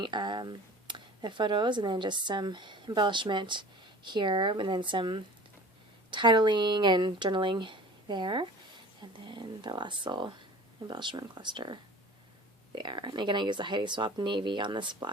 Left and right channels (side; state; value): both; normal; correlation 0.41